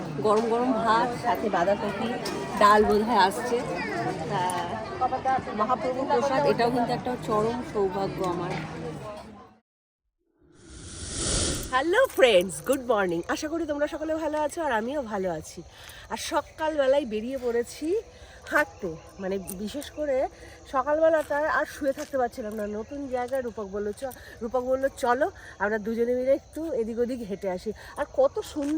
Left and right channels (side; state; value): both; identical; correlation 1.00